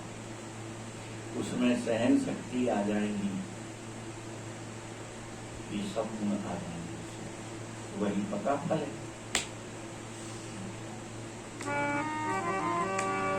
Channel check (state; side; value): identical; both; correlation 1.00